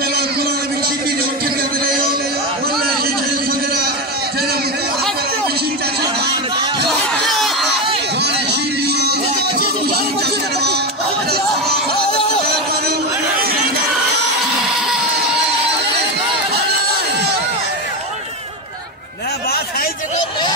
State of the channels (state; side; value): normal; both; correlation 0.14